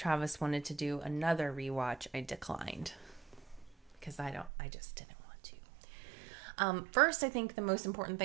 wanted to do another rewatch, I declined because I just didn't want to. First, I think the most important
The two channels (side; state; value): left; drops out; at 4.5 s